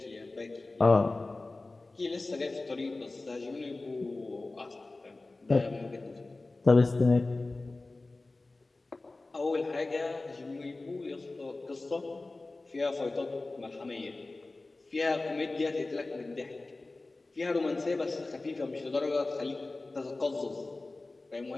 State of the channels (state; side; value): quieter; right; 3.2 dB